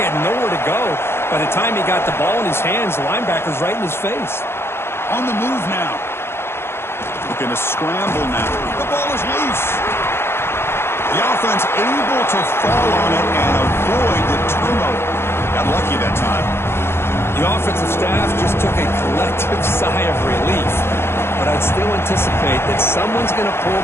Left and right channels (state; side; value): late; right; 0.12 ms